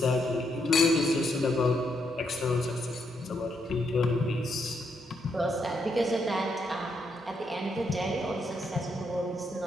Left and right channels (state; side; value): normal; both; correlation 0.78